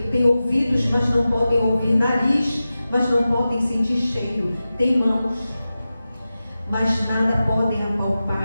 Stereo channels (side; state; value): both; inverted; correlation -0.94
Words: Tem ouvidos, mas não podem ouvir. Nariz, mas não podem sentir cheiro. Tem mãos, mas nada podem